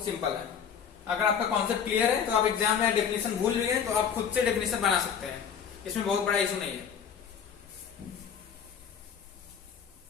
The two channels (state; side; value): quieter; right; 7.5 dB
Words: सिंपल है। अगर आपका कॉन्सेप्ट क्लियर है तो आप एग्जाम में डेफिनेशन भूल भी गए तो आप खुद से डेफिनेशन बना सकते हैं, इसमें बहुत बड़ा इशू नहीं है।